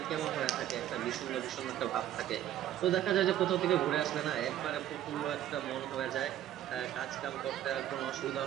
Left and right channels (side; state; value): left; quieter; 11.9 dB